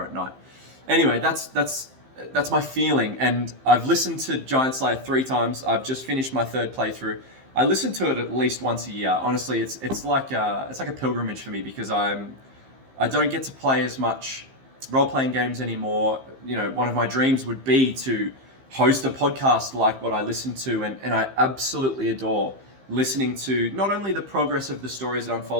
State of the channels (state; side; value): late; left; 15 ms